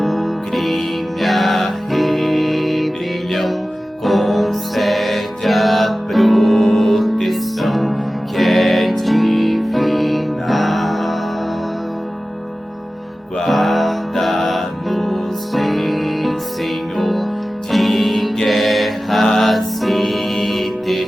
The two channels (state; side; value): normal; both; correlation 0.96